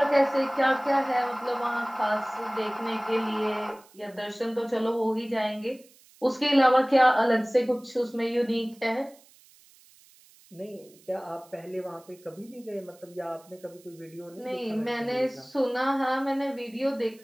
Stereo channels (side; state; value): right; noise; hiss, 27 dB below the sound